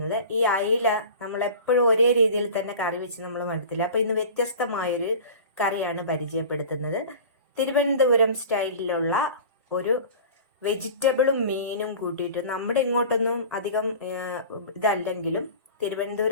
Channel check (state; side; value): inverted; both; correlation -0.38